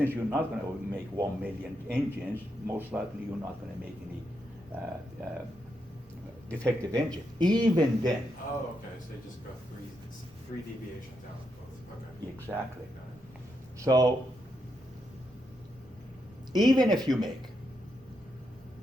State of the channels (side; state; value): both; normal; correlation 0.82